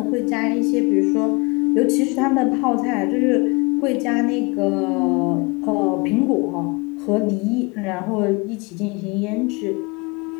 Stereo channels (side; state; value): right; quieter; 27.9 dB